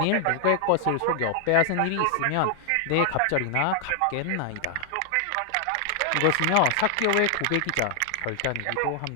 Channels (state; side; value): different; both; correlation 0.00